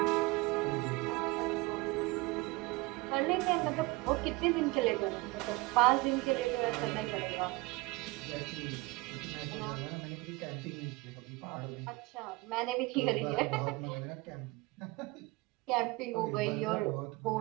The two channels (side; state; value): left; quieter; 23.2 dB